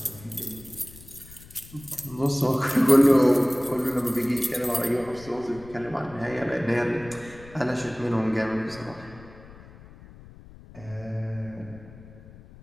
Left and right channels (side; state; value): left; noise; rumble, 20 dB below the sound